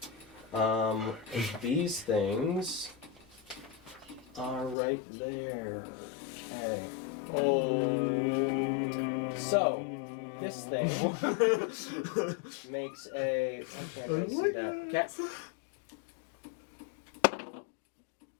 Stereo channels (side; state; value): right; drops out; at 4.8 s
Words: These things are right there. Okay. Oh. So, this thing makes a. I can't really see that. Okay.